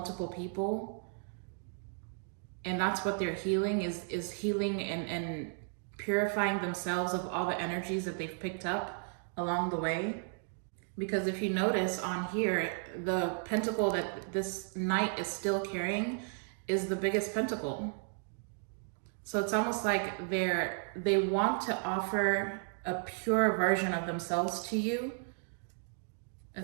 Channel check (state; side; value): silent; left; 55 dB below the other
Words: people, and that's what they're healing, is healing and purifying themselves of all the energies that they've picked up along the way. Because if you notice on here, the pentacle that this knight is still carrying is the biggest pentacle. So it's almost like they want to offer a pure version of themselves to you,